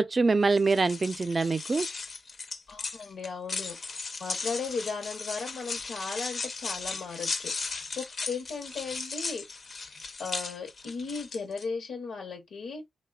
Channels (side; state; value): both; normal; correlation 0.87